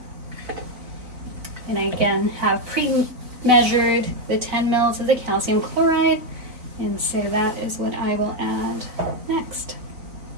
And I again have pre-measured the 10 mL of the calcium chloride, and so that is what I will add next.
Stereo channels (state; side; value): late; left; 3.9 ms